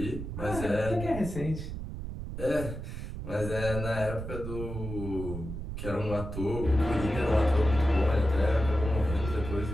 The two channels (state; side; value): noise; right; rumble, 7 dB below the sound